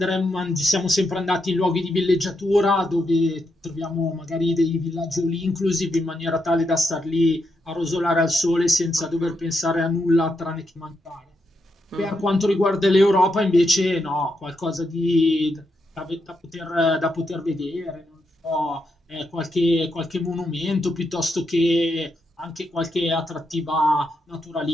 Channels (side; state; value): both; normal; correlation 0.81